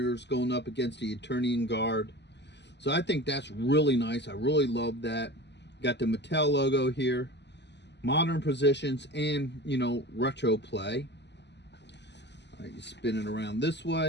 going up against the Eternian Guard. So I think that's really nice. I really love that. Got the Mattel logo here, modern positions, and retro play. All right, you spin it around this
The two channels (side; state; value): right; late; 0.50 ms